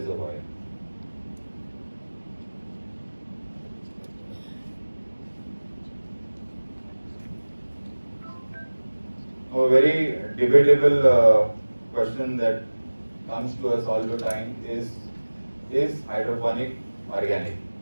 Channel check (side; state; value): both; inverted; correlation -1.00